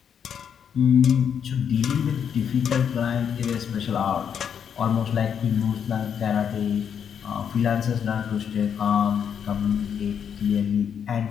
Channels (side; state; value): right; quieter; 7.9 dB